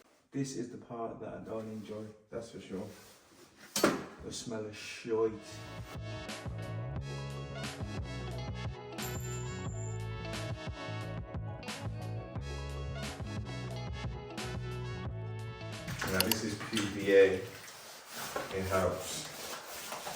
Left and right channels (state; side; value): identical; both; correlation 1.00